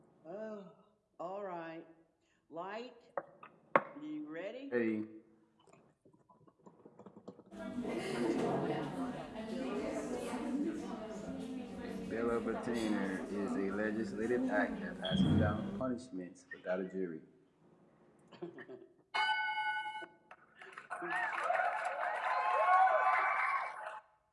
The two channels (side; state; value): both; identical; correlation 1.00